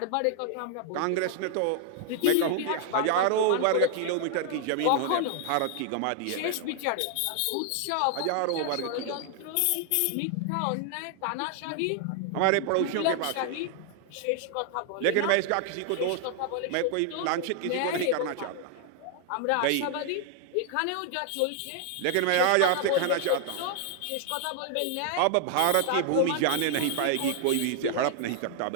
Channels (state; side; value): different; both; correlation 0.00